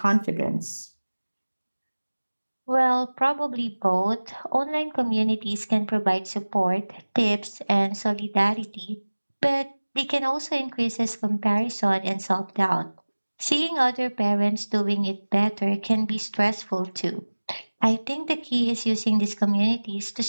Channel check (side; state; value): both; inverted; correlation -1.00